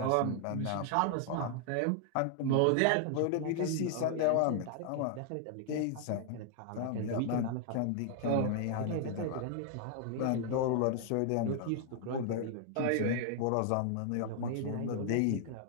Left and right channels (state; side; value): different; both; correlation 0.00